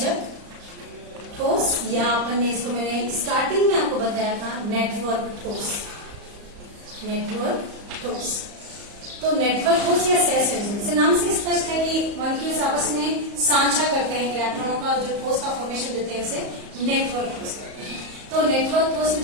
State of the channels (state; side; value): late; left; 34 ms